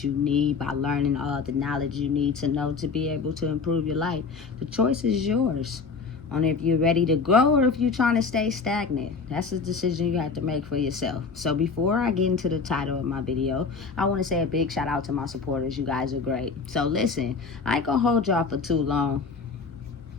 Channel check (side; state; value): right; quieter; 4.9 dB